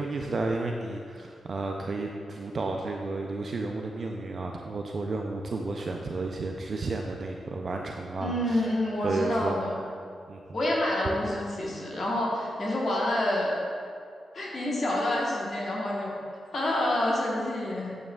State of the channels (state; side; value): normal; both; correlation 0.84